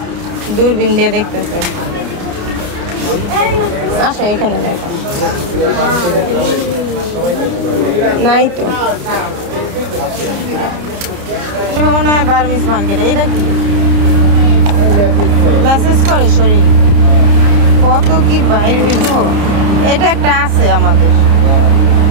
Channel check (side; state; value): left; late; 30 ms